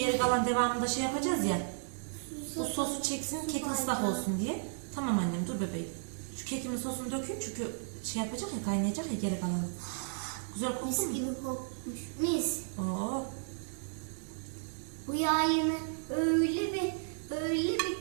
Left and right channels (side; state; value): left; silent; 55 dB below the other